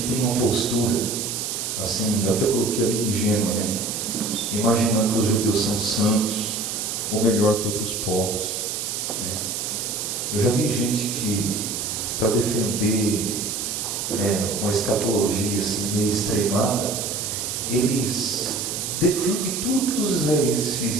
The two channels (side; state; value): right; noise; hiss, 3 dB below the sound